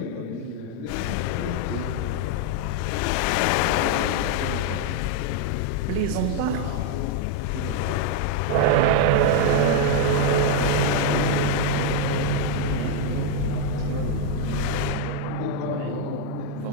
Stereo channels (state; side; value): different; both; correlation 0.00